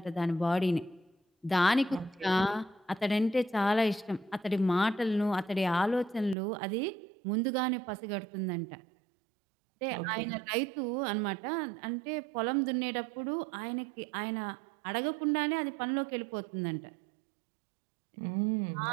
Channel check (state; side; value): drops out; left; at 6.4 s